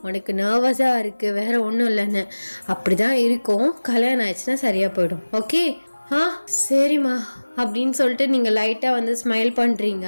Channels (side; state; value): both; inverted; correlation -1.00